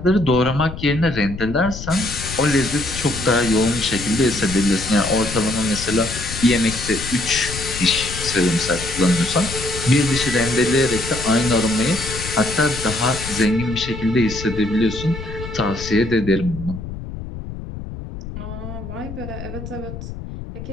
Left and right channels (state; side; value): noise; left; rumble, 9 dB below the sound